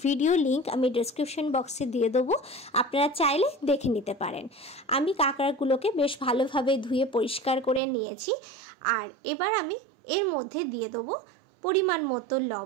ভিডিও লিংক আমি ডেসক্রিপশন বক্সে দিয়ে দেবো, আপনারা চাইলে দেখে নিতে পারেন। আমি কাঁকড়াগুলোকে বেশ ভালোভাবে ধুয়ে পরিষ্কার করে নিয়েছি। আর এবার আমি এর মধ্যে দিয়ে দেবো পরিমাণ মতো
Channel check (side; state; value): left; drops out; at 7.8 s